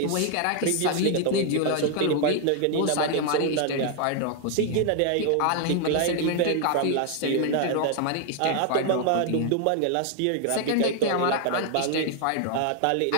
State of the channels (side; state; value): both; different; correlation 0.00